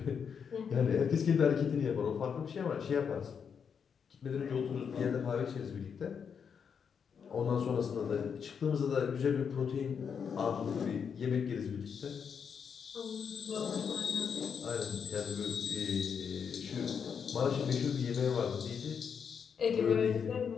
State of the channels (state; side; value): quieter; right; 6.8 dB